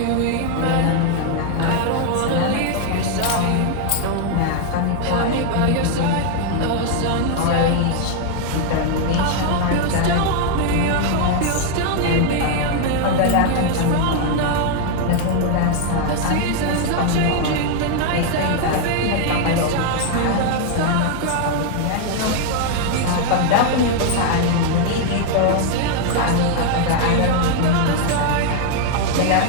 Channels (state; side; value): different; both; correlation 0.00